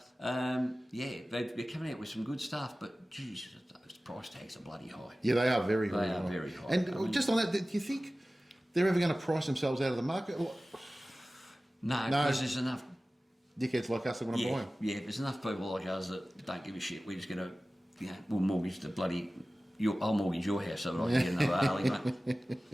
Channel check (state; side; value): normal; both; correlation 0.97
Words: they're coming out with some good stuff, but, geez, those price tags are bloody high. Yeah, they are very, very high. high. Very high. And just on that, do you think they're ever going to price themselves out of the market? No, because there's enough dickheads like us that want to buy them. Yeah, there's enough people like us that don't give a shit. We're just going to, we'll mortgage the bloody... I'll mortgage your house so that I can get another Harley, mate.